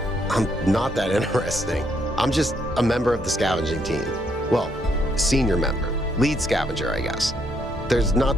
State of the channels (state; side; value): normal; both; correlation 0.73